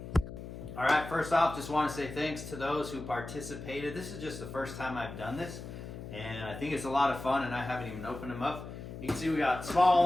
All right, first off, just wanna say thanks to those who participated. This is just the first time I've done this, and I think it's a lot of fun, and I haven't even opened them up. You can see we got small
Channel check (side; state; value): left; noise; hum, 10 dB below the sound